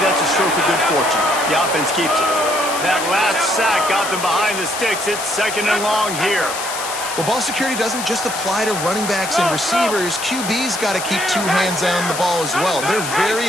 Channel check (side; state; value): left; noise; hiss, 7 dB below the sound